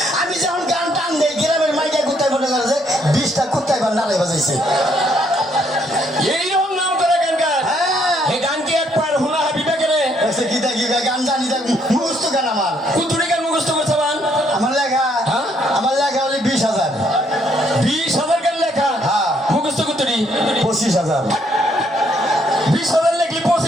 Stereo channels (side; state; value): both; normal; correlation 0.70